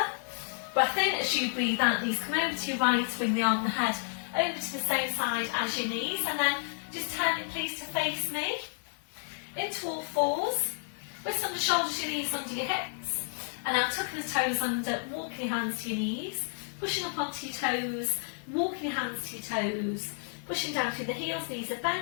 Breath in as you breathe out, knees come over to your right, bring the arm and the head over to the same side as your knees, and then just turn it please to face me. Into all fours, wrists under shoulders, your knees under your hips, and now tucking the toes under, walking your hands to your knees, pushing up onto your toes, walking your hands to your toes, pushing down through the heels, knees are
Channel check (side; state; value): right; silent; 57 dB below the other